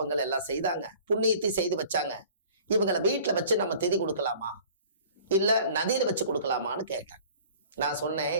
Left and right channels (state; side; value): inverted; both; correlation -0.47